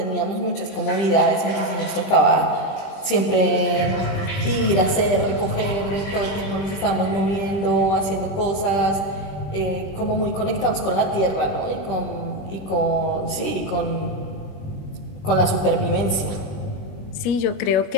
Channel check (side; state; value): right; late; 20 ms